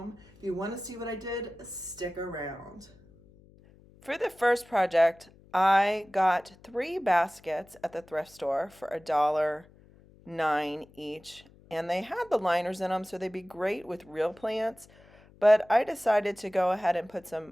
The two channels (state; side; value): noise; left; hum, 26 dB below the sound